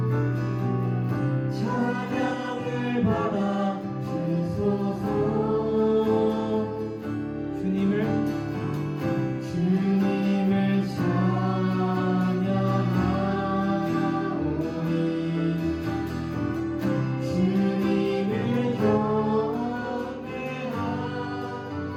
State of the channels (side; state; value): both; identical; correlation 1.00